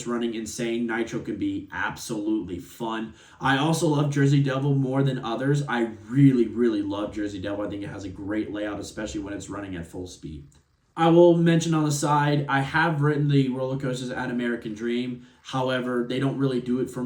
running insane. Nitro can be absolutely fun. I also love Jersey Devil more than others. I really, really love Jersey Devil. I think it has a great layout, especially when it's running at full speed. I will mention on the side, I have ridden the roller coasters at American Dream. However, they don't really do it for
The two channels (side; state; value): both; identical; correlation 1.00